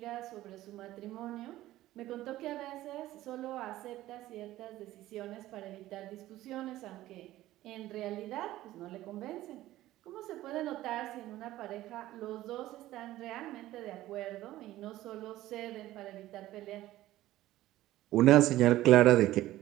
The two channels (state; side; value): quieter; left; 15.3 dB